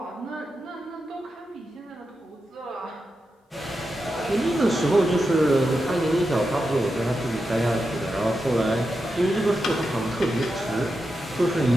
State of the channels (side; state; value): both; normal; correlation 0.88